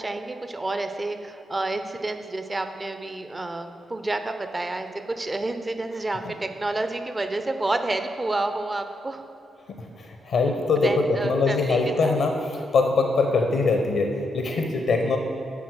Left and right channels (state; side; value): normal; both; correlation 0.81